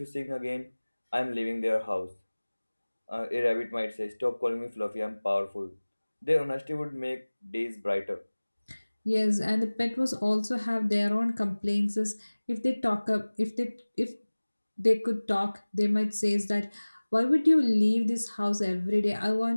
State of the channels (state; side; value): inverted; both; correlation -1.00